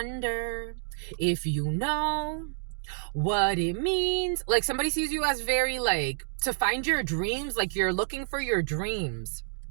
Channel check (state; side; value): silent; left; digital silence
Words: if you know what it means. Like, somebody sees you as very like, to find your dreams, like you're looking for your dreams.